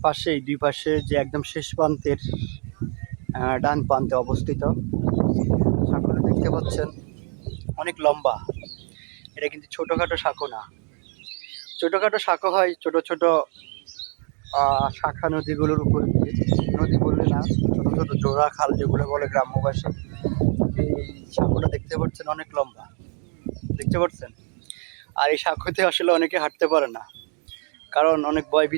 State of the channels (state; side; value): quieter; left; 39.7 dB